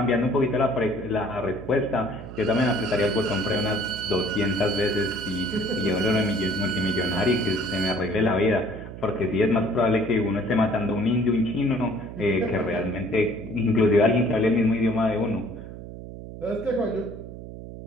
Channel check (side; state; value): right; noise; hum, 12 dB below the sound